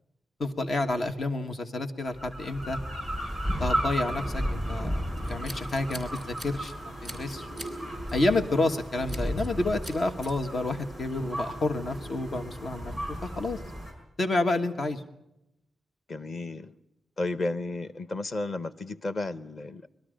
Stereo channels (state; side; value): normal; both; correlation 0.87